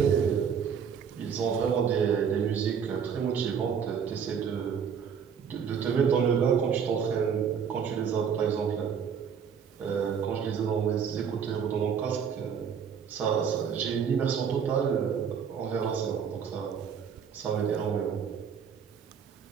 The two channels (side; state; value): left; quieter; 7.2 dB